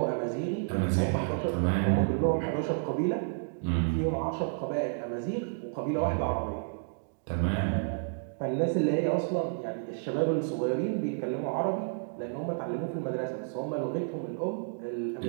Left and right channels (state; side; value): silent; left; digital silence